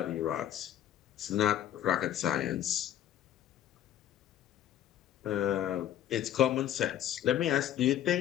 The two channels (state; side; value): quieter; right; 11.2 dB